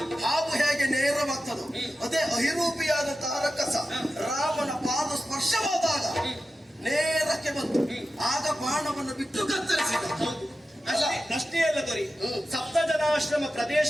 ಹಾವು ಹೇಗೆ ನೇರವಾಗ್ತದೋ ಅದೇ ಅಹಿರೂಪಿಯಾದಂತಹ ರಕ್ಕಸ ರಾಮನ ಪಾದ ಸ್ಪರ್ಶವಾದಾಗ ನೇರಕ್ಕೆ ಬಂತು. ಆಗ ಬಾಣವನ್ನು ಬಿಟ್ಟು ಕತ್ತರಿಸಿದ. ಅಲ್ಲ, ಪ್ರಶ್ನೆ ಅಲ್ಲ ದೊರೆ. ಸಪ್ತ ಜನಾಶ್ರಮ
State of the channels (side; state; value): both; normal; correlation 0.93